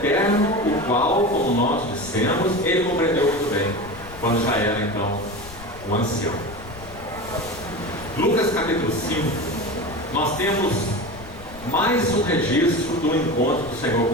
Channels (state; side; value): noise; left; rumble, 18 dB below the sound